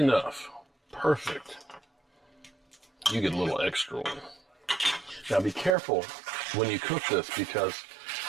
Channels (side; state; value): left; drops out; at 5.8 s